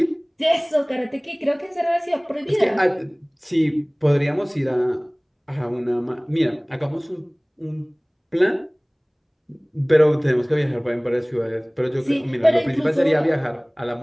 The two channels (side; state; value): both; identical; correlation 1.00